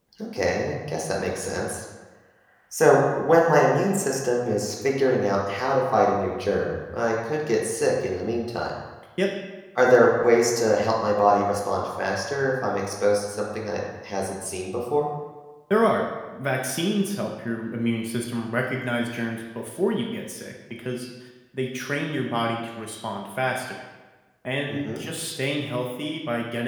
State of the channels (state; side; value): identical; both; correlation 1.00